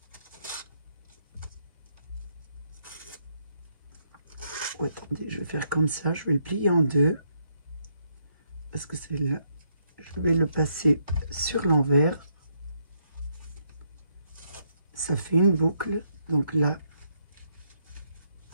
Oh, attendez, je vais faire comme ça, je vais le plier en deux. Parce que c'est là, je vais le passer sur l'envers. Ça fait une boucle, donc là,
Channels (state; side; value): inverted; both; correlation -0.75